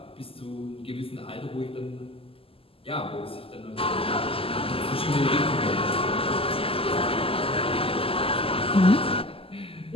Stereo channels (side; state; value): right; late; 0.27 ms